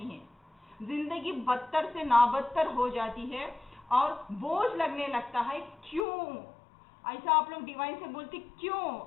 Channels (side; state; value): right; drops out; at 6.1 s